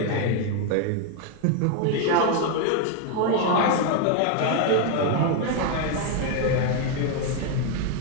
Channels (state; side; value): different; both; correlation 0.01